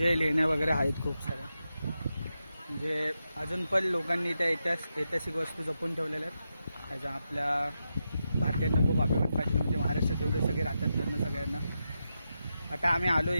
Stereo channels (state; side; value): inverted; both; correlation -0.87